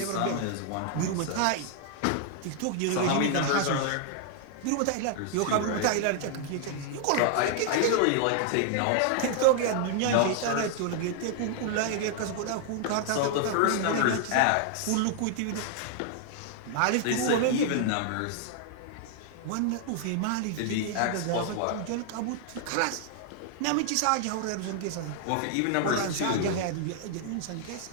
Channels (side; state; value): both; different; correlation 0.00